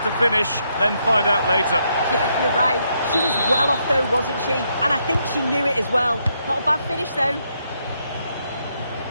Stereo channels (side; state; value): both; inverted; correlation -0.77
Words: to finish, then find out later. Yeah, you're right. She was well off though, wasn't she? And I think she knew it as well. Not a bad finish though.